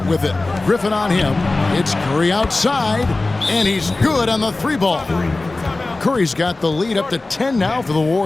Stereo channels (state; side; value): quieter; right; 3.2 dB